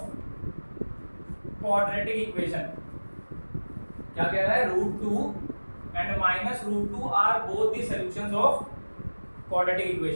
quadratic equation। क्या कह रहा है, √2 and minus √2 are both the solutions of quadratic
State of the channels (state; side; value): inverted; both; correlation -1.00